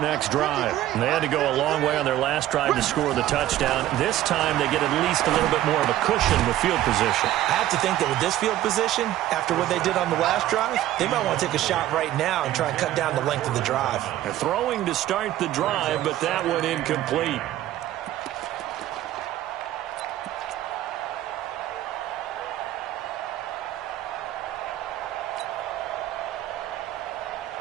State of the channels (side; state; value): left; quieter; 13.7 dB